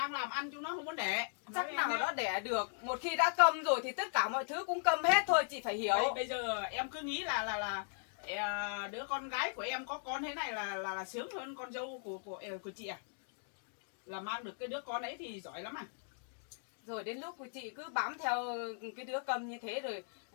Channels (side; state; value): right; silent; digital silence